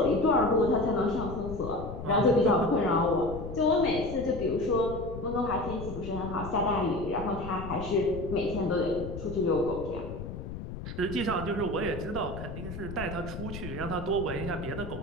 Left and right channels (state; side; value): noise; left; rumble, 9 dB below the sound